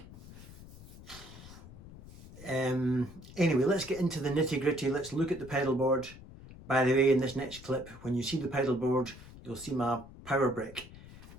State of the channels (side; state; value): left; noise; rumble, 17 dB below the sound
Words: Anyway, let's get into the nitty gritty. Let's look at the pedal board. By the way, in this next clip, when you see the pedal board, you'll see my power brick.